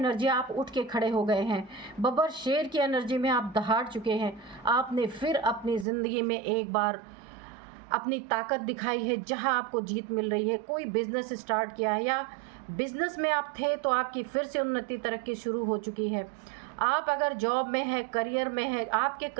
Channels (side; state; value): left; drops out; at 5.9 s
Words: आप उठ के खड़े हो गए हैं। बब्बर शेर की एनर्जी में आप दहाड़ चुके हैं। आपने फिर अपनी ज़िंदगी में एक बार अपनी ताकत दिखाई है, जहां आपको जीत मिल रही है। कोई बिज़नेस स्टार्ट किया है या बिज़नेस में आप थे तो आपकी फिर से उन्नति तरक्की शुरू हो चुकी है। आप अगर जॉब में है, करियर में है, आपके